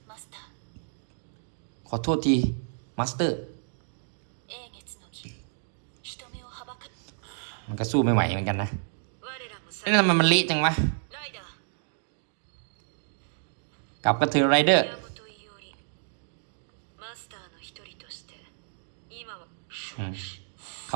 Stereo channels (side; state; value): left; silent; digital silence